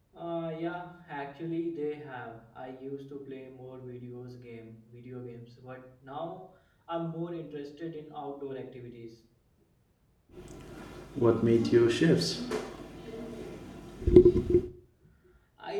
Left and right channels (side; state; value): both; identical; correlation 1.00